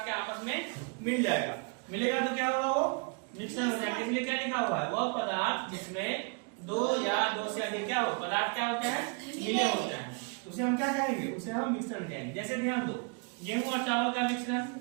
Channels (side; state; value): left; quieter; 35.0 dB